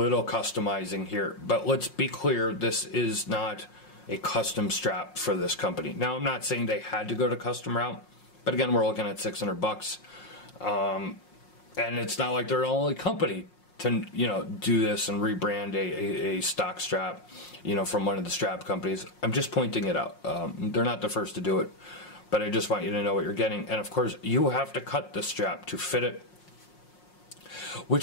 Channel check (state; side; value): late; right; 5.6 ms